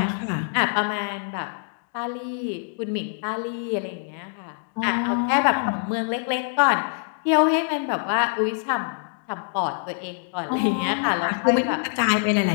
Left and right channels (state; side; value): silent; right; digital silence